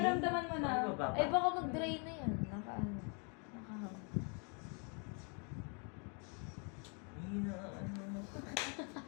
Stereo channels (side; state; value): right; quieter; 36.9 dB